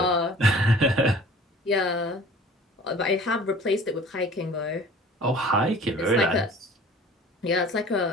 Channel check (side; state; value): both; normal; correlation 0.46